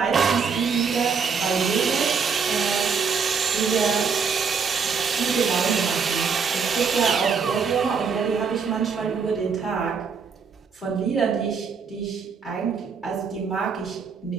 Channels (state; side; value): quieter; left; 5.8 dB